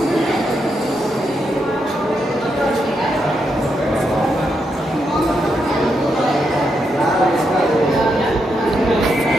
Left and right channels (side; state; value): both; normal; correlation 0.82